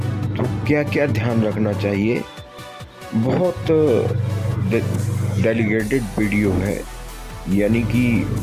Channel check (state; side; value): identical; both; correlation 1.00